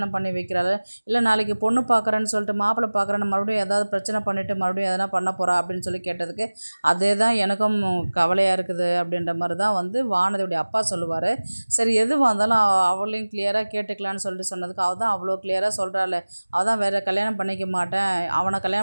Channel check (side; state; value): both; inverted; correlation -1.00